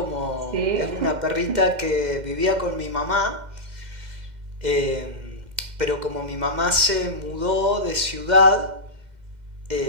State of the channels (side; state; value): left; late; 2.1 ms